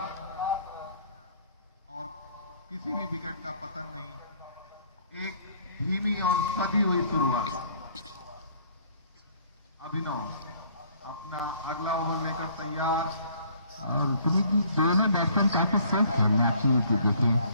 और किसी भी विकेट का पतन नहीं। एक धीमी और सधी हुई शुरुआत। अभिनव अपना अगला ओवर लेकर तैयार। और पुनीत जी दोनों बैट्समैन काफी सेफ खेलने आप चीज देखिए।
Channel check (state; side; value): inverted; both; correlation -0.59